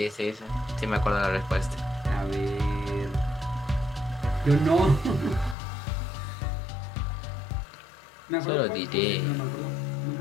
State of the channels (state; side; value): drops out; right; at 5.6 s